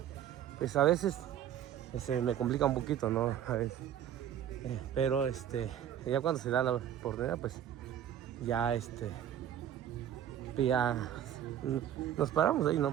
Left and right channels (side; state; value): left; quieter; 10.3 dB